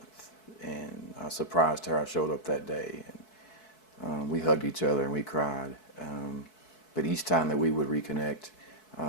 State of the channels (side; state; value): right; late; 4.6 ms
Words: And I surprised her. I showed up that day, and we hugged each other and we cried. But each time that we would reconnect